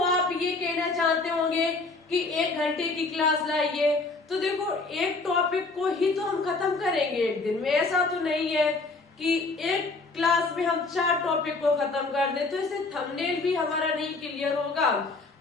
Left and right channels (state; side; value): quieter; right; 3.6 dB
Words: आप ये कहना चाहते होंगे कि 1 घंटे की क्लास लाइए, तो देखो एक टॉपिक को ही तो हम खत्म करेंगे एक दिन में, ऐसा तो नहीं है कि एक क्लास में हम 4 टॉपिक को खत्म कर दें, तो इससे थंबनेल भी हमारा नहीं क्लियर होगा